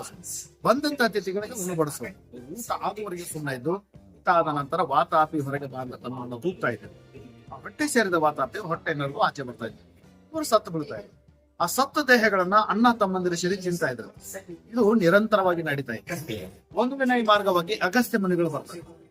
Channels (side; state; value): both; identical; correlation 1.00